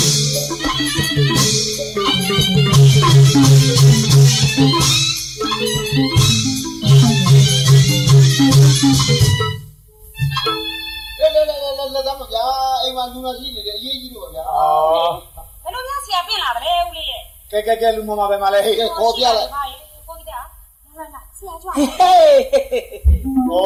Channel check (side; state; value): both; identical; correlation 1.00